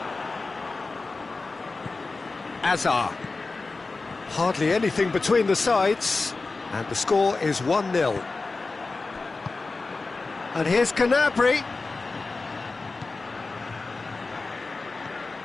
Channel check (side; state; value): right; quieter; 3.7 dB